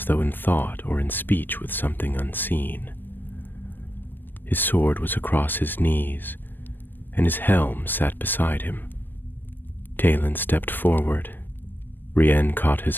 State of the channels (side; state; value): right; late; 0.093 ms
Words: though in thought or in speech with something unseen. His sword was across his knees, and his helm sat beside him. Talon stepped forward. Rien caught